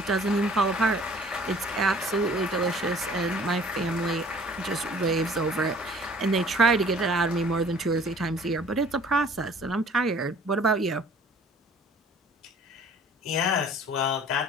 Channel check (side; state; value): both; normal; correlation 0.52